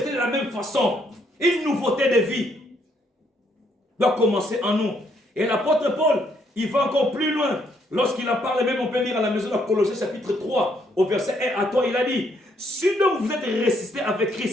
de la même façon. Une nouveauté de vie doit commencer en nous. Et l'apôtre Paul, il va encore plus loin. Lorsqu'il en parle même, on peut lire à la maison de Colossiens chapitre 3, au verset 1 à 3, il a dit, si donc vous êtes ressuscités avec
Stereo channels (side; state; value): both; normal; correlation 0.71